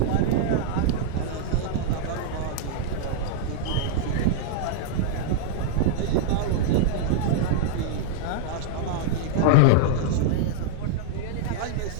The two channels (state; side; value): different; both; correlation -0.02